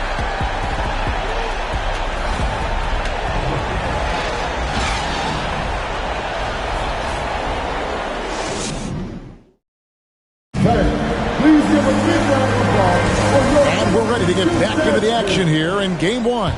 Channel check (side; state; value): both; identical; correlation 1.00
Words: Here in game one.